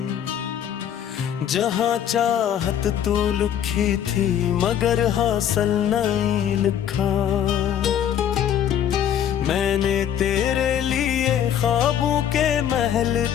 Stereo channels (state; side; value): quieter; right; 9.7 dB